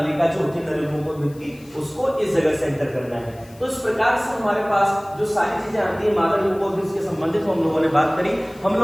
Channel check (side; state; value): left; noise; hiss, 26 dB below the sound